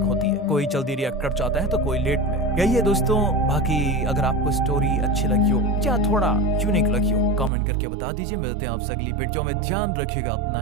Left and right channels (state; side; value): drops out; left; at 7.5 s